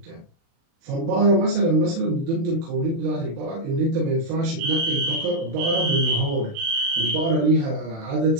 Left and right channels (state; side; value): late; left; 36 ms